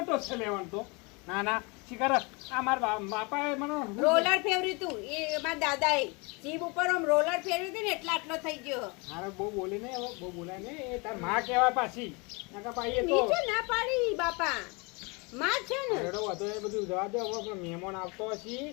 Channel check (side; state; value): right; quieter; 29.3 dB